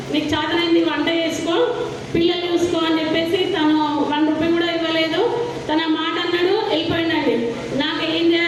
నీకు చేతనైంది వంట చేసుకో, పిల్లలు చూసుకో అని చెప్పేసి తను 1 రూపాయి కూడా ఇవ్వలేదు. తన మాట అన్నాడు, వెళ్ళిపోయిందండి. నాకు ఏం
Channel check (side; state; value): both; identical; correlation 1.00